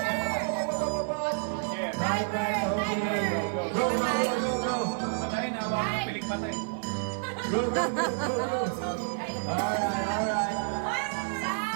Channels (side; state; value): left; silent; digital silence